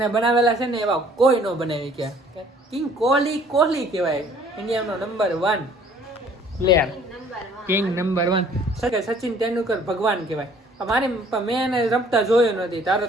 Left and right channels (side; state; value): both; normal; correlation 0.56